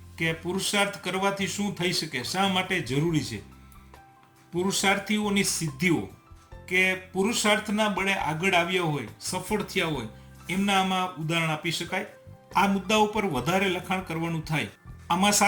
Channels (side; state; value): both; identical; correlation 1.00